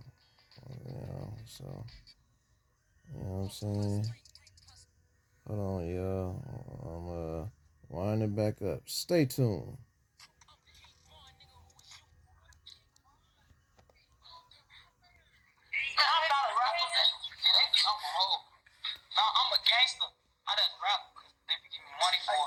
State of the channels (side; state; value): both; identical; correlation 1.00